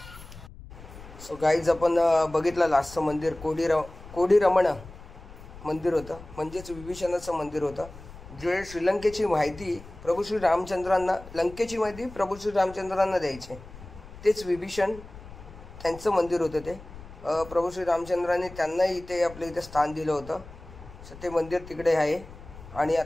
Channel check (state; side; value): noise; left; rumble, 17 dB below the sound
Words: सो गाईज आपण बघितलं लास्टचं मंदिर कोडी रमण मंदिर होतं. म्हणजेच विभीषणाचं मंदिर होतं. जे श्रीलंकेची माहिती प्रभू श्री रामचंद्रांना, लंकेची माहिती प्रभू श्री रामचंद्रांना द्यायचे तेच विभीषण त्यांचं मंदिर होतं. ते प्रभू श्री रामचंद्रांनी त्यांनाही इथे आपल्या इथे स्थान दिलं होतं. सो ते मंदिर तिकडे आहे. आणि